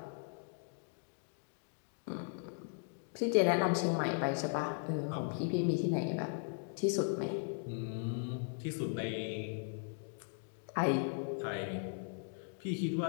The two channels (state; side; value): silent; right; 53 dB below the other